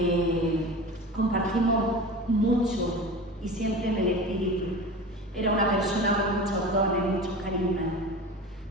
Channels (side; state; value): both; normal; correlation 0.32